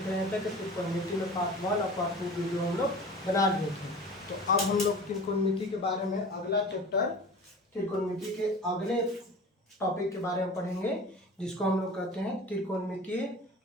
रहे थे कि त्रिकोणमिति में पार्ट 1 और पार्ट 2 वीडियो हम लोग बना लिए थे। तो अब हम लोग त्रिकोणमिति के बारे में अगला चैप्टर त्रिकोणमिति के अगले टॉपिक के बारे में पढ़ेंगे, जिसको हम लोग कहते हैं त्रिकोणमितीय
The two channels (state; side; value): normal; both; correlation 0.38